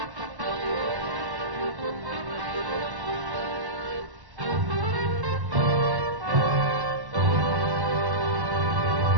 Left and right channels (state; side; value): late; left; 1.1 ms